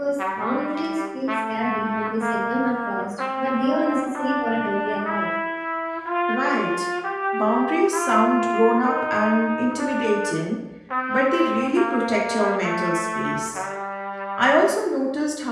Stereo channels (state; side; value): identical; both; correlation 1.00